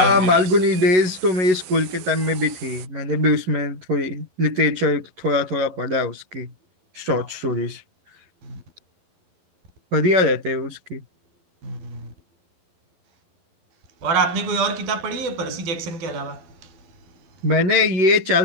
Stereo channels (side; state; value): left; late; 11 ms